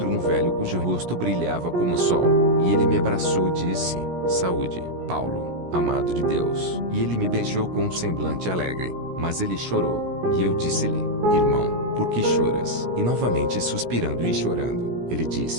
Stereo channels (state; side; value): late; left; 17 ms